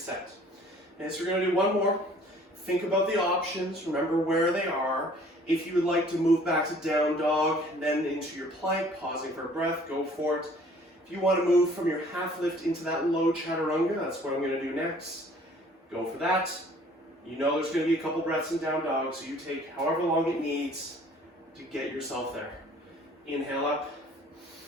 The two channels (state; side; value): normal; both; correlation 0.54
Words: Okay, so we're going to do one more. Think about the options. Remember where they are. If you would like to move back to down dog, then into your plank, pausing for a breath, go for it. If you want to move from your half lift into that low chaturanga, that's what I'm going to do next. Go for that. You know there's going to be a couple breaths in down dog, so you take however long it needs to get yourself there. Inhale up.